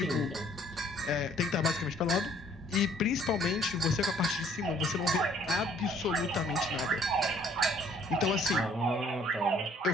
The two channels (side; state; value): both; normal; correlation 0.60